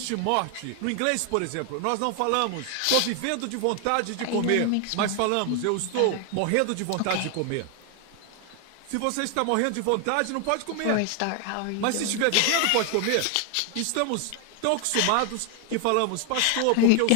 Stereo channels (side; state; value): both; different; correlation 0.00